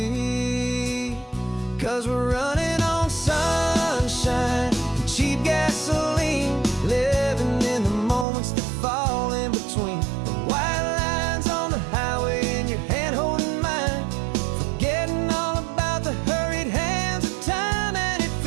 'cause we're running on sunshine and cheap gasoline, living in the moments that fall in between the white lines on the highway and your hand holding mine, forgetting all about the hurried hands of time. And it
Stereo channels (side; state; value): left; drops out; at 8.2 s